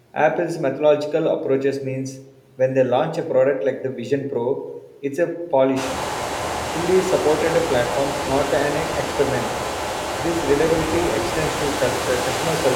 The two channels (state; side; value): identical; both; correlation 1.00